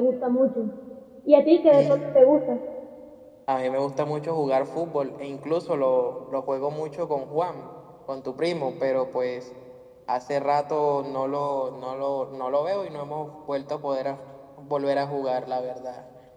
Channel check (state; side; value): identical; both; correlation 1.00